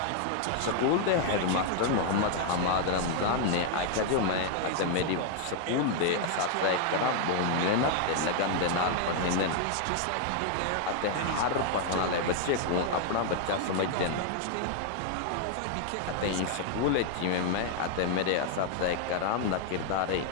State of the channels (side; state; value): both; different; correlation 0.00